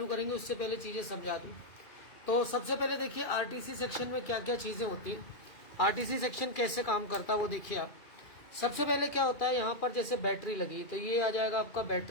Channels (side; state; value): right; late; 2.4 ms